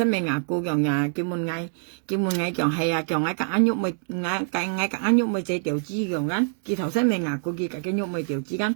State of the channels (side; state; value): left; silent; digital silence